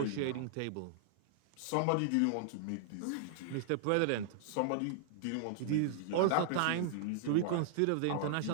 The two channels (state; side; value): different; both; correlation -0.01